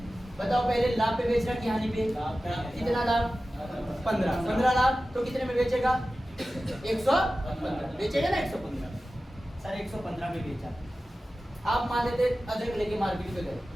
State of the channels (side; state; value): both; normal; correlation 0.95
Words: बताओ पहले लाभ पे बेच रहा कि हानि पे? कितना लाभ? 15 लाभ, तो कितने में बेचेगा? 115 बेचेगा ना, 115 सर 115 में बेचा। आप मान लेते अदरक लेके मार्केट पे गए,